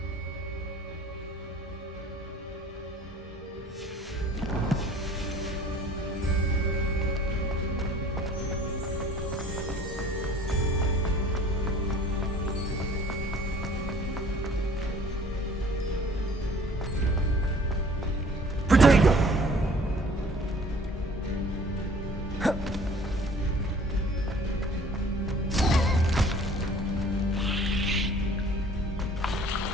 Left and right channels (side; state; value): both; normal; correlation 0.51